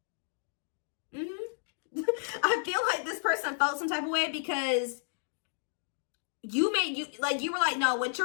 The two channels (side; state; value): right; silent; digital silence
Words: I feel like this person felt some type of way because you were like, no, what